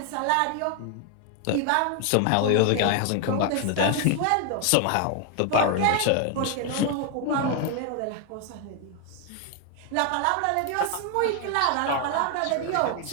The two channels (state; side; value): different; both; correlation 0.00